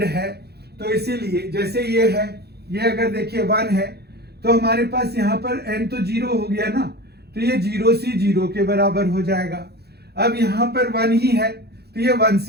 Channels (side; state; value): left; late; 0.47 ms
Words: है। तो इसीलिए जैसे ये है, ये अगर देखिए 1 है तो हमारे पास यहां पर n तो 0 हो गया ना, तो ये 0C 0 के बराबर हो जाएगा। अब यहां पर 1 ही है तो ये